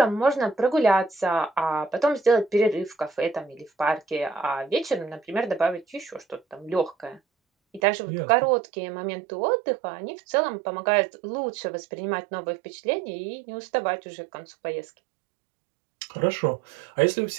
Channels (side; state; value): left; drops out; at 7.8 s